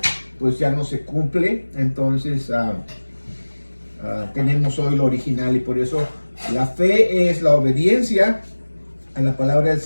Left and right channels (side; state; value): both; inverted; correlation -1.00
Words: pues ya no se cumple. Entonces tenemos hoy lo original, y por eso la fe es la obediencia a la palabra del